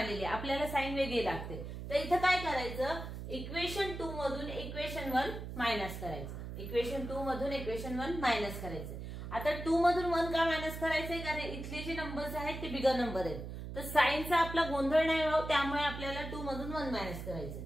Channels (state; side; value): noise; right; hum, 8 dB below the sound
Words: आहे. आपल्याला साइन वेगळी लागते. तर इथं काय करायचं, इक्वेशन 2 मधून इक्वेशन 1 मायनस करायचं. इक्वेशन 2 मधून इक्वेशन 1 मायनस करायचं. आता 2 मधून 1 का मायनस करायचंय, कारण इथले जे नंबर्स आहेत ते बिगर नंबर आहेत. तर साइनचा आपला गोंधळ नाही व्हावं त्यामुळे आपल्याला 2 मधून 1 मायनस करायचं.